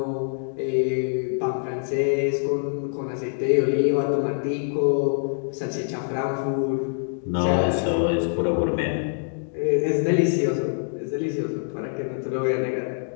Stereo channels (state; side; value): silent; right; digital silence